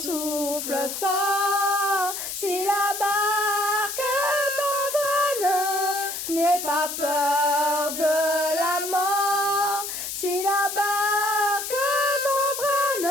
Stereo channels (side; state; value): left; noise; hiss, 6 dB below the sound